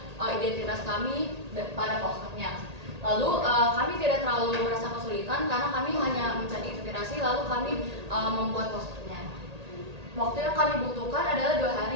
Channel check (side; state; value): left; late; 1.8 ms